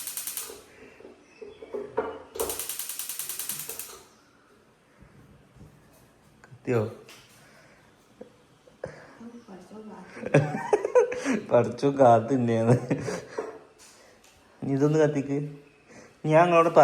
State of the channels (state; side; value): identical; both; correlation 1.00